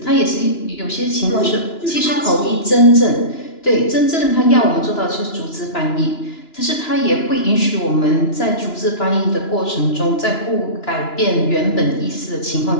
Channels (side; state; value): right; late; 2.9 ms